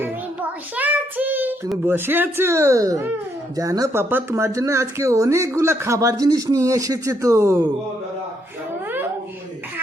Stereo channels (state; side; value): normal; both; correlation 0.74